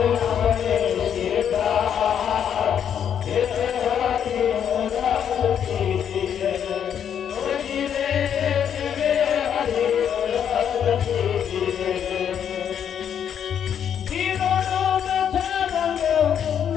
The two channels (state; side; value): quieter; right; 8.6 dB